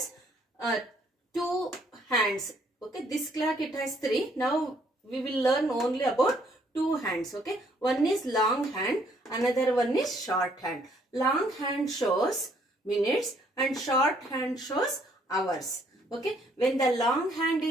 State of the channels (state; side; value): normal; both; correlation 0.66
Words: two hands. Okay. This clock it has three. Now we will learn only about two hands. Okay. One is long hand. Another one is short hand. Long hand shows minutes and short hand shows hours. Okay. When the long hand